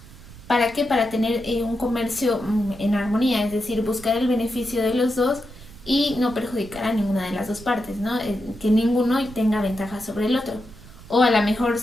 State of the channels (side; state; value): right; noise; rumble, 19 dB below the sound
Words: ¿Para qué? Para tener un comercio en armonía, es decir, buscar el beneficio de los dos y no perjudicar a ninguna de las dos partes, ¿no? Que ninguno tenga ventaja sobre el otro. O a lo mejor